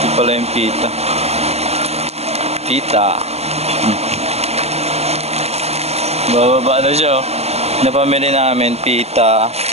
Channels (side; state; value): left; late; 0.30 ms